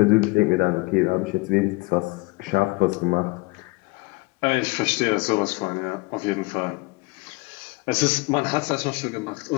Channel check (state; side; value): quieter; right; 24.7 dB